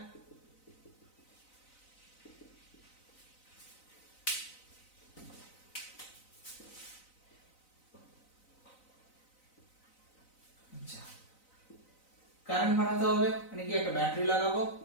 আচ্ছা, কারেন্ট বানাতে হবে, মানে কি একটা ব্যাটারি লাগাবো,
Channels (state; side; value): late; right; 4.0 ms